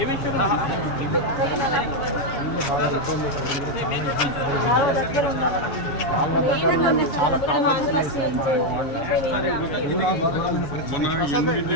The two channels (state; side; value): late; right; 7.1 ms